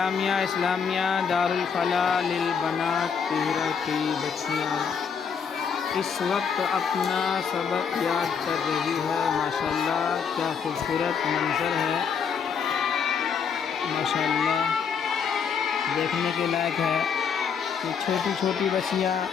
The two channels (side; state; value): right; quieter; 6.6 dB